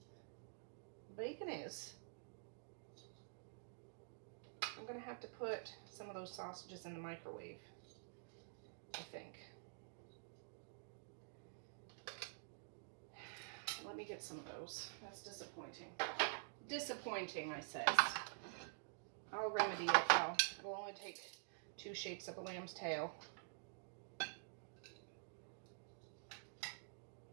Bacon is. I'm going to have to put some of those sausages in the microwave, I think. Let me get some of those. That's disappointing. Disappointing, I says. I'll remedy it though. It'll only take 2 shakes of a lamb's tail.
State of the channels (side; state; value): left; silent; digital silence